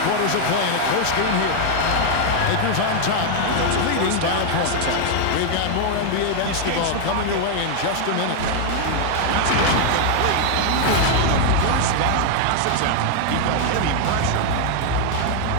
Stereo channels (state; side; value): different; both; correlation 0.00